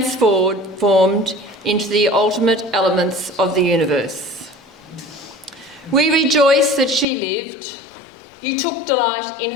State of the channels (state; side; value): drops out; right; at 7.1 s